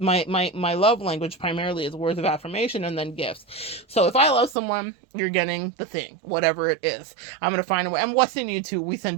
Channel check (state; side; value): drops out; left; at 4.5 s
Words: love language primarily is words of affirmation and then gifts. So if I love someone, you're getting the thing, whatever it is. I'm going to find a way. And what's in you too? We send